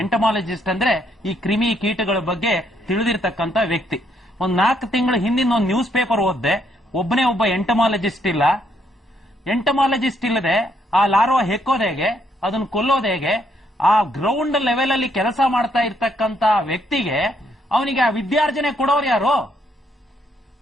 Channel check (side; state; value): both; normal; correlation 0.72